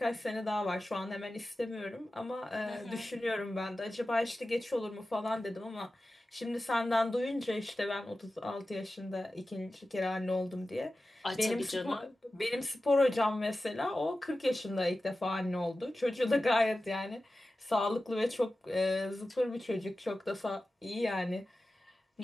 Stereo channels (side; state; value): both; normal; correlation 0.94